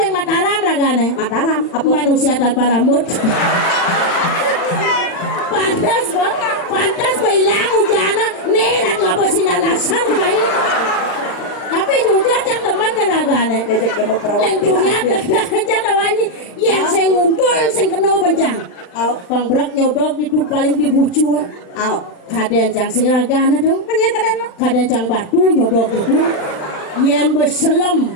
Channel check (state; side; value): late; right; 40 ms